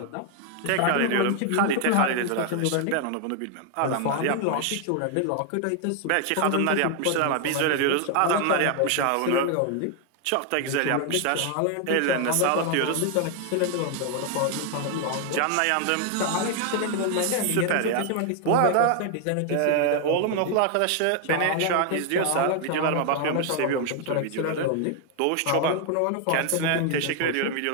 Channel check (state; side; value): different; both; correlation 0.00